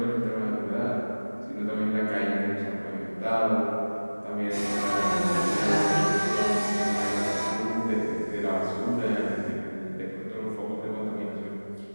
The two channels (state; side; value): inverted; both; correlation -1.00